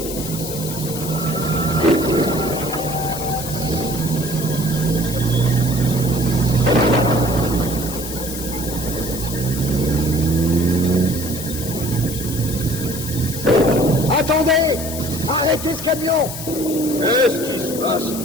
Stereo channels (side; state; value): left; noise; hiss, 8 dB below the sound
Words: Attendez! Arrêtez ce camion! Qu'est-ce qui se passe?